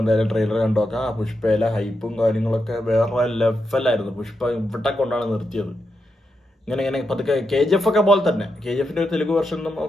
എന്തായാലും ട്രെയിലർ കണ്ടു നോക്കാം. ആ പുഷ്പയിലെ ഹൈപ്പും കാര്യങ്ങളൊക്കെ വേറെ ലെവലായിരുന്നു. പുഷ്പ ഇവിടെ കൊണ്ടാണ് നിർത്തിയത്. ഇങ്ങനെ പതുക്കെ KGF ഒക്കെ പോലെ തന്നെ, KGF ഒരു തെലുഗു വെർഷൻ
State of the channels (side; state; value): both; normal; correlation 0.85